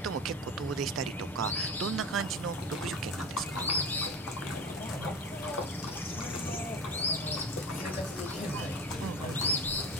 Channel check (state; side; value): normal; both; correlation 0.30